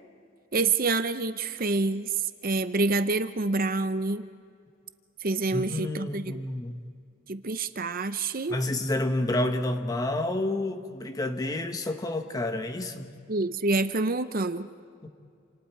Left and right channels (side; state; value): both; normal; correlation 0.47